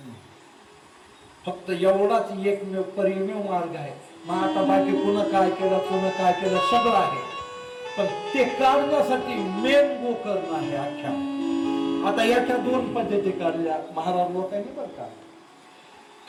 फक्त एवढाच एकमेव परिमेव मार्ग आहे. मग आता बाकी पुन्हा काय केलं सगळं आहे. पण ते काढण्यासाठी मेन गोकर्ण आहे अख्ख्या. आता याच्या दोन पद्धती काढल्या महाराज लोकांनी बरं का.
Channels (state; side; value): identical; both; correlation 1.00